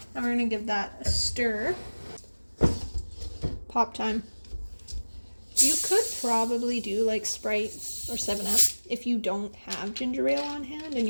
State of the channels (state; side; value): inverted; both; correlation -1.00